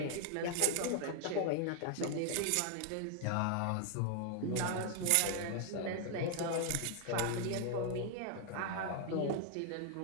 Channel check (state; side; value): different; both; correlation 0.00